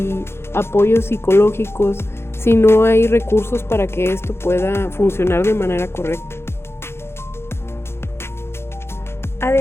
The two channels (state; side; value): late; right; 0.12 ms